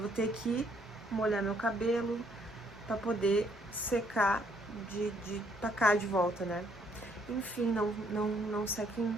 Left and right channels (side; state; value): both; normal; correlation 0.68